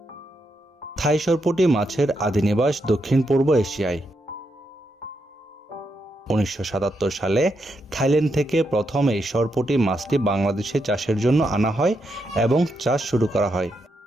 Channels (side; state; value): both; normal; correlation 0.82